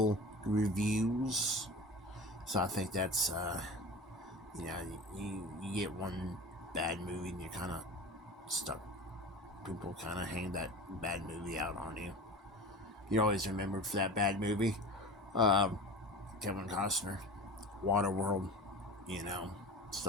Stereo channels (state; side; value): normal; both; correlation 0.34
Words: reviews. So I think that's, you get one bad movie and you're kind of stuck. People kind of hang that bad movie out on you. You're always remembered for that bad movie. Kevin Costner, Waterworld,